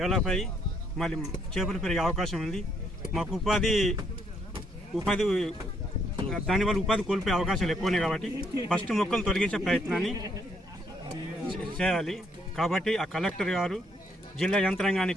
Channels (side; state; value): both; normal; correlation 0.71